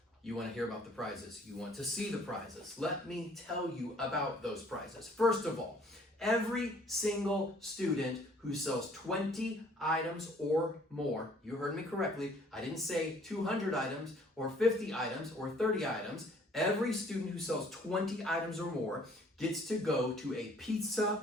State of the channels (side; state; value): both; normal; correlation 0.58